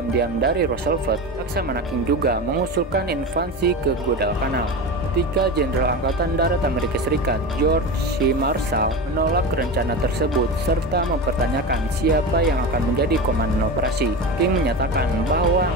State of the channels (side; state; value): both; normal; correlation 0.24